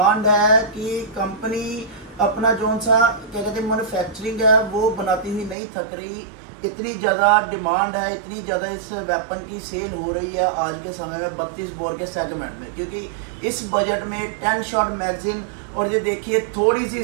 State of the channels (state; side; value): drops out; left; at 5.6 s